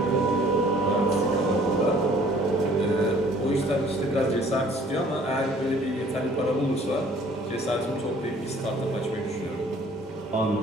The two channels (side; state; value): both; normal; correlation 0.55